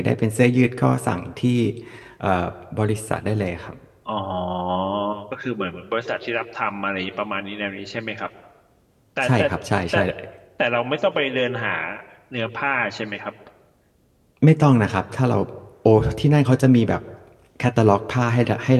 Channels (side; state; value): both; identical; correlation 1.00